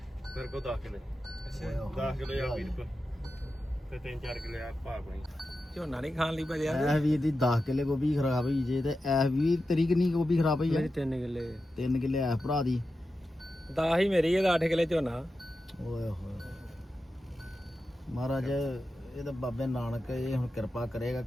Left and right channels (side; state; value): both; normal; correlation 0.91